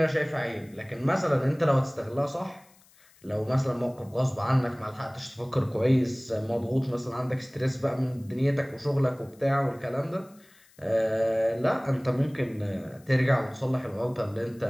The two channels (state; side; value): noise; left; hiss, 29 dB below the sound